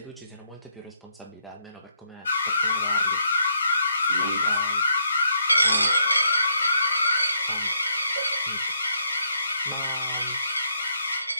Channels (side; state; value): both; inverted; correlation -0.73